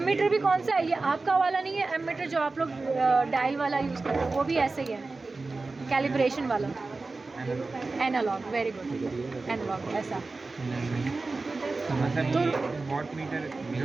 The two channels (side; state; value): left; quieter; 3.6 dB